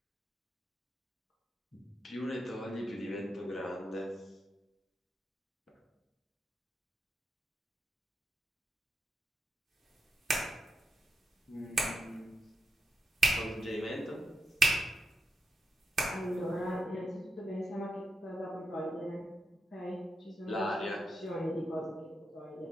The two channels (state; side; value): normal; both; correlation 0.86